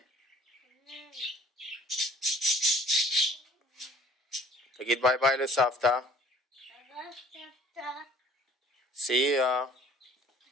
תגיד ביי ביי לסבתא. See ya.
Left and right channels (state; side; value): normal; both; correlation 0.53